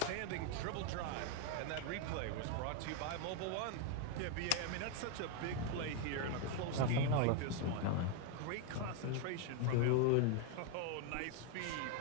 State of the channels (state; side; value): different; both; correlation 0.01